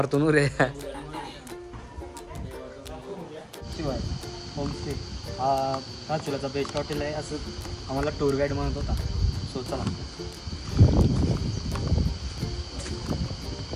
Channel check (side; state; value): both; identical; correlation 1.00